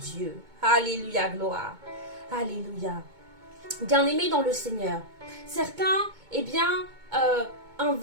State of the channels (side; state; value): left; late; 2.2 ms